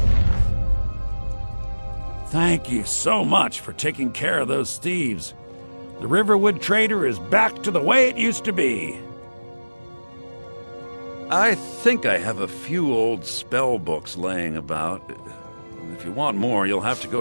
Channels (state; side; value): inverted; both; correlation -1.00